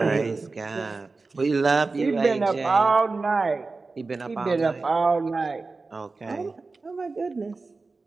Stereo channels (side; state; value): left; quieter; 3.8 dB